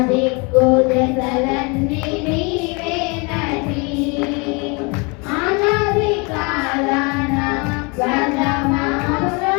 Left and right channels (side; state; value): right; quieter; 30.4 dB